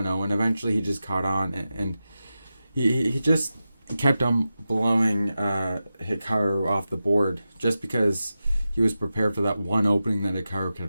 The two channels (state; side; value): inverted; both; correlation -0.92